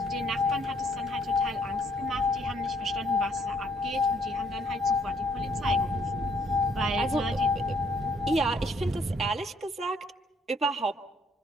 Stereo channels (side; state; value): both; normal; correlation 0.66